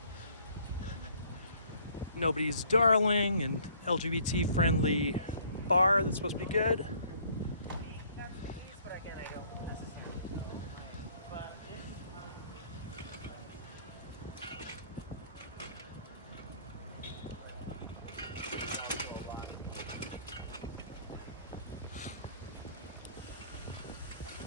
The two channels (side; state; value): both; inverted; correlation -0.59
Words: Nobody's Darling, and LGBT friendly bar that's supposed to be good.